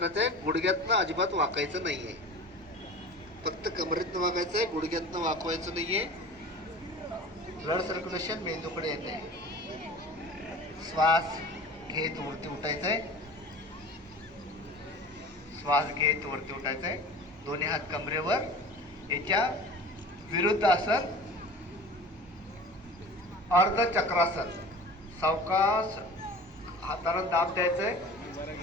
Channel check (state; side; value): normal; both; correlation 0.39